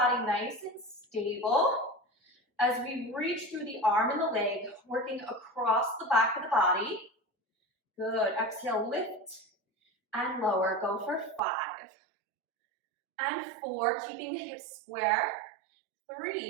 nice and stable as we reach through the arm and the leg, working across the back of the body. Good. Exhale, lift and lower. Go for 5 and 4, keeping the hips square.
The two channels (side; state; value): left; drops out; at 11.4 s